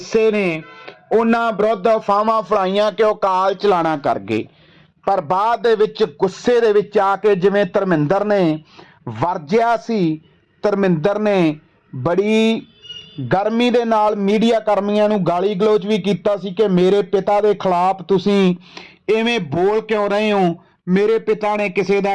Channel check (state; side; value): identical; both; correlation 1.00